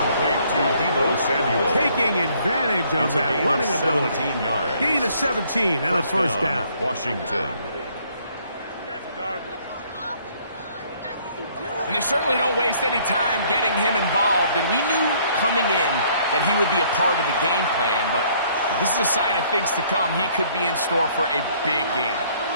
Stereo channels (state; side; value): inverted; both; correlation -0.63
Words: To Deebo Samuel. Taking advantage of that running ability. 17 yards. Gain of 17 and a first down. Washington. And they certainly don't waste any time getting him involved. And we knew coming in that he would be a part of the game plan, but this is a sign of things to come. He could be in store for a big game.